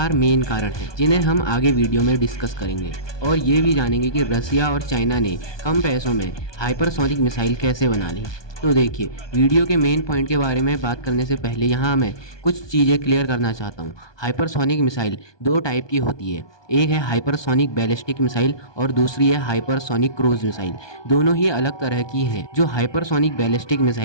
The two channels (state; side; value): late; right; 1.2 ms